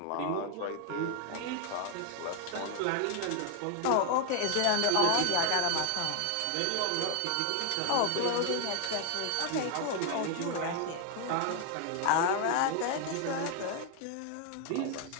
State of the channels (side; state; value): both; different; correlation 0.00